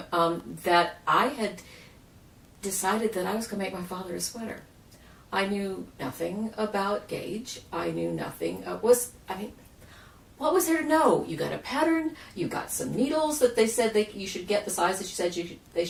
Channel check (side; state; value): both; identical; correlation 1.00